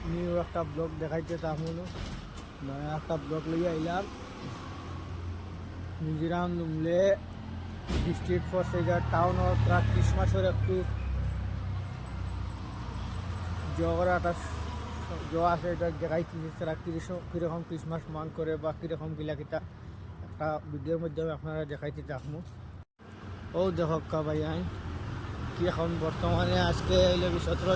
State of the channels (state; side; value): identical; both; correlation 1.00